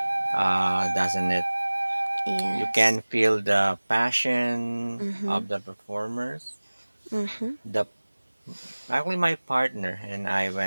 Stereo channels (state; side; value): inverted; both; correlation -1.00